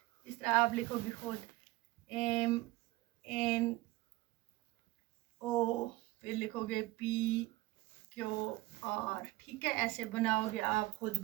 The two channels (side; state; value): left; quieter; 19.6 dB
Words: इस तरह आप लिखोगे खुद, एम एन ओ, फिर लिखोगे पी क्यू आर, ठीक है, ऐसे बनाओगे आप खुद